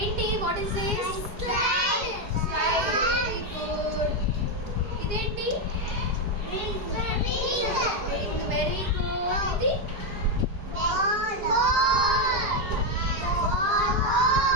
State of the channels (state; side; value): late; left; 4.8 ms